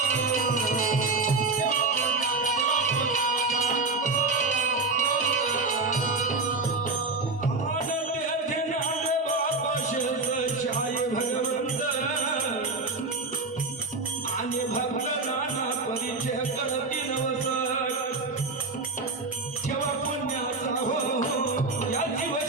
आणि भक्त नाना परिचय करती नवस. ठेवा पुण्याचा या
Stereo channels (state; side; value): quieter; left; 3.7 dB